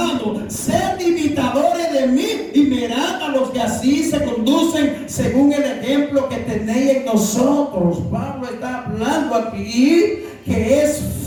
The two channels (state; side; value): identical; both; correlation 1.00